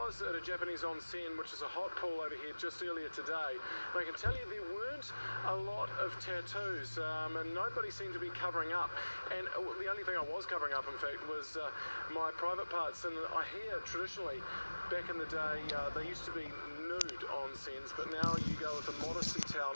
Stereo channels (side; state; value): both; inverted; correlation -1.00